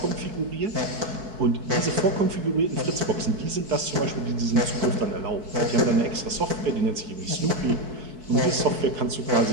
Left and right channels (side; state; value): left; late; 4.7 ms